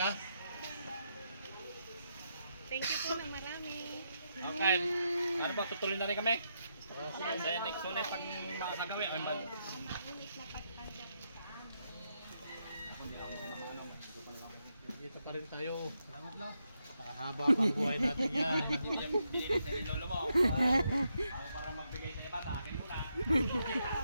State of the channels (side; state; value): both; inverted; correlation -0.81